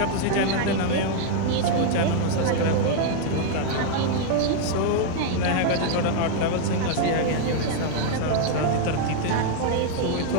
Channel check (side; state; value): both; different; correlation 0.00